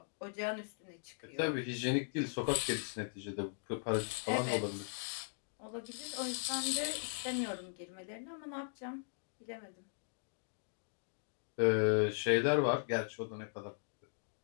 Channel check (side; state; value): right; silent; digital silence